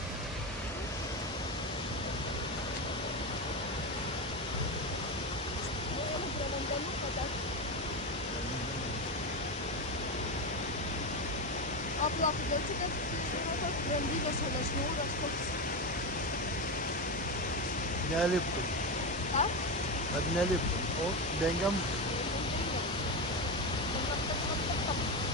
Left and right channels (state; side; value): normal; both; correlation 0.15